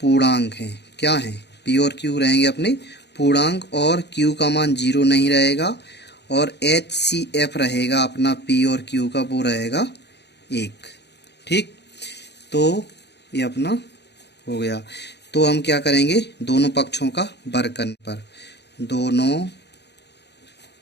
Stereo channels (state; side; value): late; right; 0.49 ms